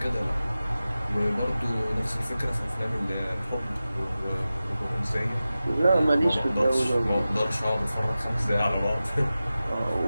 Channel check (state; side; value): inverted; both; correlation -0.95